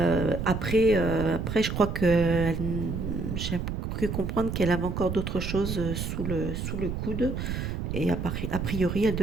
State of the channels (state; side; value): noise; right; rumble, 3 dB below the sound